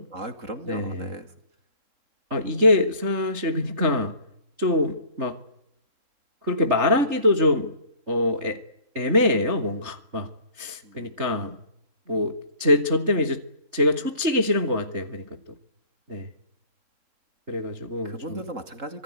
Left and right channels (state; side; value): late; left; 3.3 ms